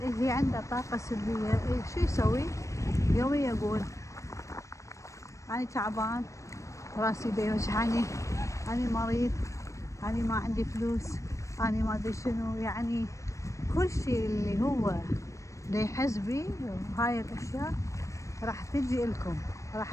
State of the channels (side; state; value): right; late; 0.15 ms